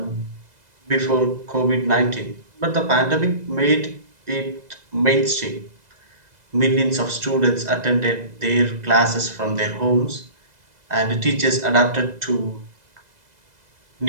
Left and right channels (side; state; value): left; late; 2.0 ms